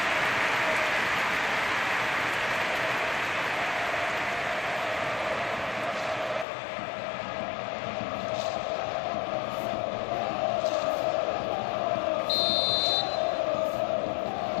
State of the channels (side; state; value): right; drops out; at 6.5 s